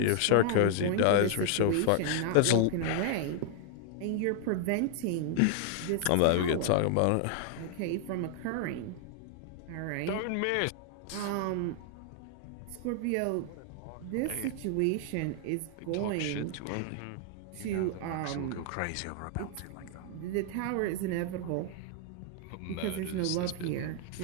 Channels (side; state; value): both; different; correlation 0.00